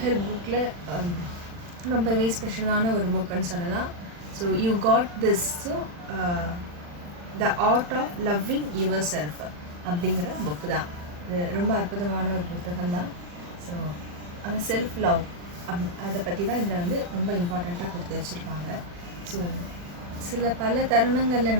ஹெல்ப் புக்கில் ரொம்பவே ஸ்பெஷலான ஒரு புக்குன்னு சொல்லலாம். So you got this. So the art of loving your self அப்படிங்கிற புக்கு தான். இது ரொம்ப அற்புதமான ஒரு புத்தகம் தான். ஸோ அந்த செல்ஃப் லவ் அதை பற்றி தான் இதில் வந்து ரொம்ப இம்பார்ட்டண்ட்டாக கொடுத்து வச்சுருப்பாங்க. ஸோ பல தருணங்களில்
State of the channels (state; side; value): late; left; 40 ms